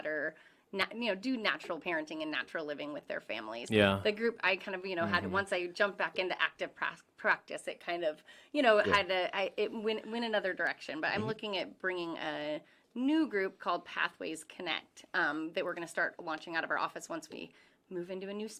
do natural parenting and natural living with their families. Yeah. The group I kind of, had once I jumped back into active practice, it kind of, it went another direction. But I'm looking at bringing a new group called Pathways Connect that we're going to start launching out of our office once we move into a new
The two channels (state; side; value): identical; both; correlation 1.00